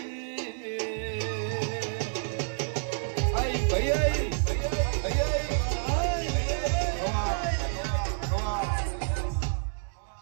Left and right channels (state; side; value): silent; left; digital silence